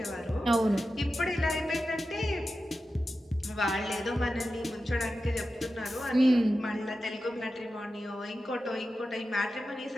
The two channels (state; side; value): normal; both; correlation 0.92